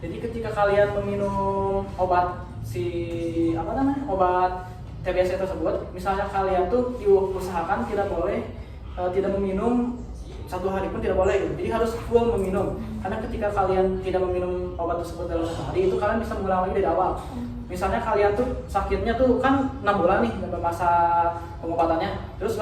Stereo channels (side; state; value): both; identical; correlation 1.00